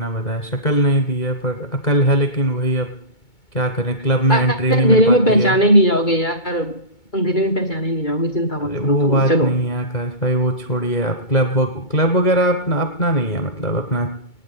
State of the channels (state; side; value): late; right; 2.2 ms